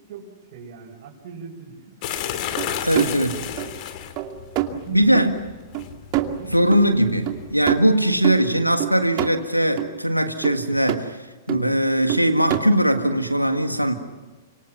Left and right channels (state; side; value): inverted; both; correlation -0.77